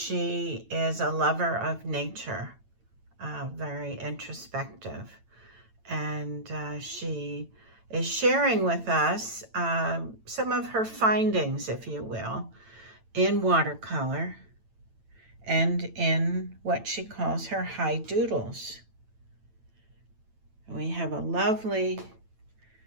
is a lover of nature, very introspective, and she is sharing with us some of her findings, if you will, in watercolor and in what she calls her high doodles. We have a lovely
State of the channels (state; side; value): late; left; 9.0 ms